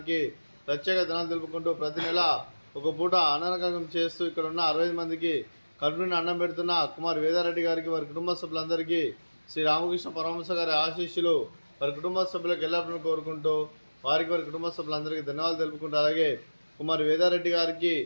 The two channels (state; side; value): inverted; both; correlation -1.00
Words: ప్రత్యేక ధనాలు తెలుపుకుంటూ ప్రతి నెల ఒక పూట అన్నగం చేస్తూ ఇక్కడ ఉన్న 60 మందికి కడుపుని అన్నం పెడుతున్న కుమార్ వేదారెడ్డి గారికి వారి కుటుంబ సభ్యులందరికీ శ్రీ రామకృష్ణ పరమహంస గారి ఆశీస్సులు వారి కుటుంబ సభ్యులకు ఎల్లప్పుడూ కోరుకుంటూ వారి కుటుంబ సభ్యులందరికీ ధన్యవాదాలు తెలుపుకుంటూ అలాగే కుమార్ వేదారెడ్డి గారికి